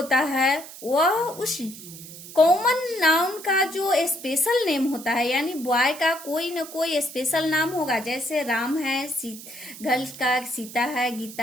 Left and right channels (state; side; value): noise; right; hiss, 15 dB below the sound